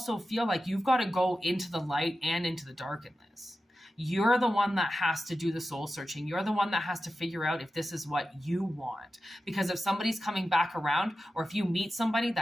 feel like you've got to go into the light and into the dark in this. You're the one that has to do the soul searching. You're the one that has to figure out if this is what you want. Because if somebody's coming back around, or if you meet somebody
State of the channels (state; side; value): normal; both; correlation 0.92